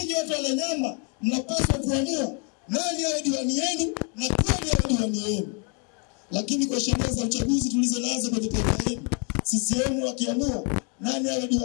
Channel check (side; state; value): right; quieter; 37.2 dB